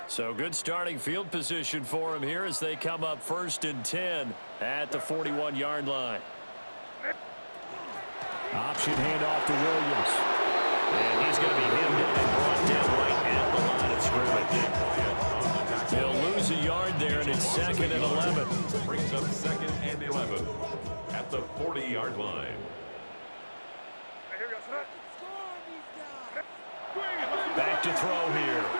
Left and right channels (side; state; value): both; inverted; correlation -1.00